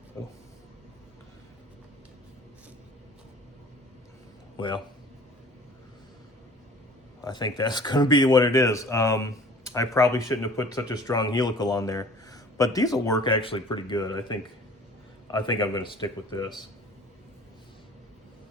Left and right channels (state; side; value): normal; both; correlation 0.47